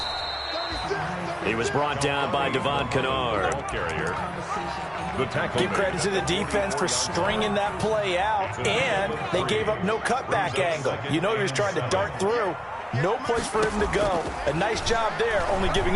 He was brought down by Devon Kennard. Give credit to the defense for stringing that play out, and they gave up no cutback angle. You know he was trying to dart through. No place for him to go. A nice job there, only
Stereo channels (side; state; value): both; identical; correlation 1.00